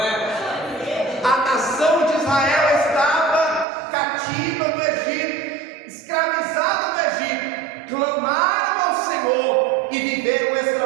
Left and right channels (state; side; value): drops out; left; at 3.7 s